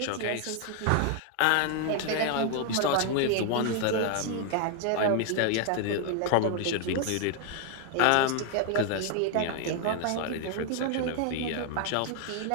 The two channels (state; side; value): different; both; correlation 0.00